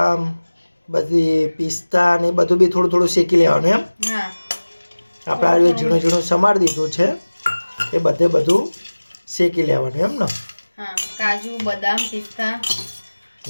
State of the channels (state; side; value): inverted; both; correlation -1.00